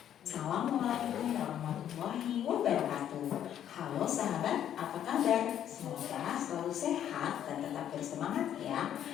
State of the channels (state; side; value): quieter; right; 10.3 dB